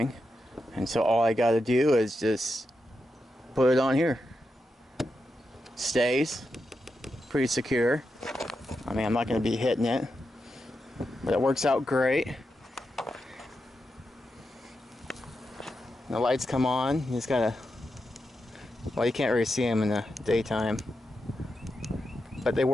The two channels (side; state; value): both; normal; correlation 0.87